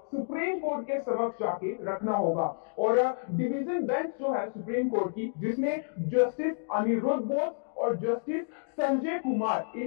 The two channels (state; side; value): silent; right; digital silence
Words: सुप्रीम कोर्ट के समक्ष जाके रखना होगा। और डिवीजन बेंच जो है सुप्रीम कोर्ट की, जिसमें जस्टिस अनिरुद्ध बोस और जस्टिस संजय कुमार,